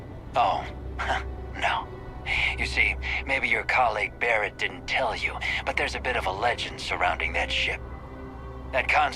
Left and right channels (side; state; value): both; identical; correlation 1.00